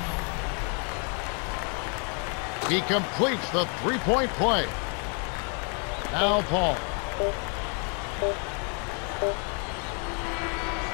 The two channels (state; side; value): quieter; right; 39.3 dB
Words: He completes the 3-point play. Now Paul.